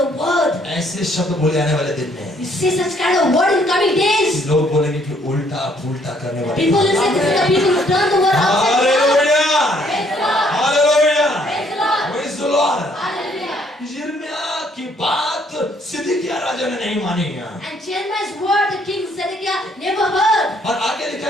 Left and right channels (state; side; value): normal; both; correlation 0.66